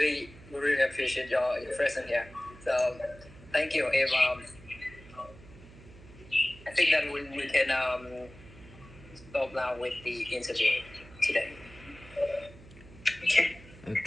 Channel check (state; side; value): noise; right; hum, 20 dB below the sound